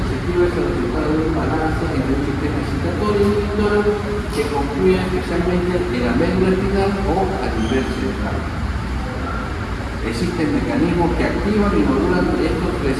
es el resultado de un balance entre un sistema excitatorio y inhibidor que concluye especialmente en la médula espinal o a nivel cerebral. Existen mecanismos que activan y modulan estos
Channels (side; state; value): both; identical; correlation 1.00